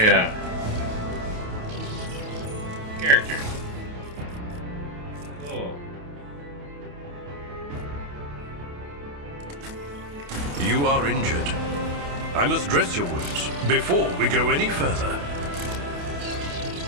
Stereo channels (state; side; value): late; left; 28 ms